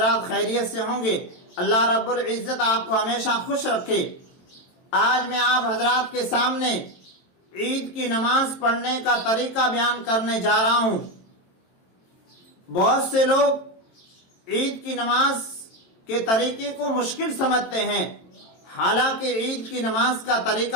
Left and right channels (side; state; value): right; late; 22 ms